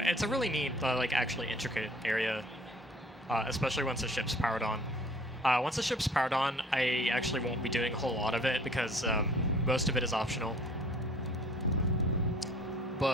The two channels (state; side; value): normal; both; correlation 0.51